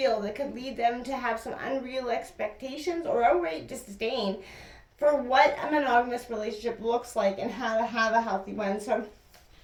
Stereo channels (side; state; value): both; identical; correlation 1.00